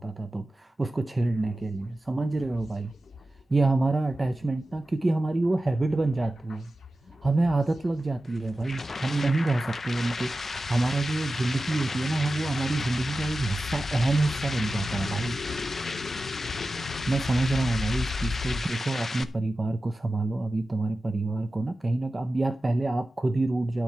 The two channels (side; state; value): both; normal; correlation 0.94